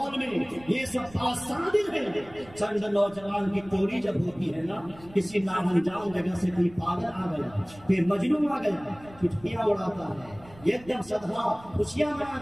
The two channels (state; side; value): noise; right; rumble, 22 dB below the sound